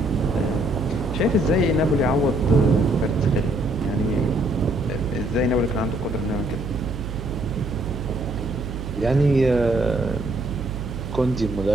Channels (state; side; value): noise; right; hum, 7 dB below the sound